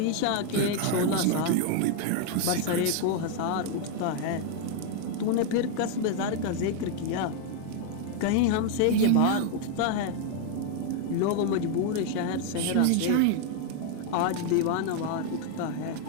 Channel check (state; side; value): different; both; correlation 0.01